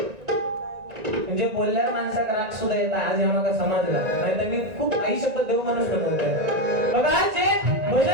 म्हणजे बोलल्यावर माणसाक राग सुद्धा येतात. आज आम्हाला समजला नाही तर मी खूप आई शपथ देऊ माणूस बनवतोय. बघा जे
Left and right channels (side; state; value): left; late; 1.9 ms